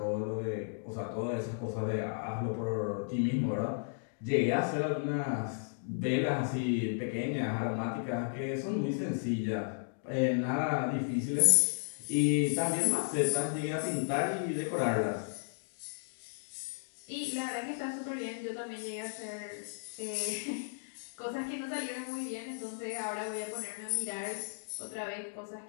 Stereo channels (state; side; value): silent; right; digital silence